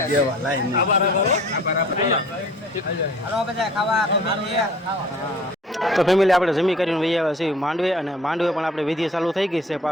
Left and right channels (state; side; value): normal; both; correlation 0.49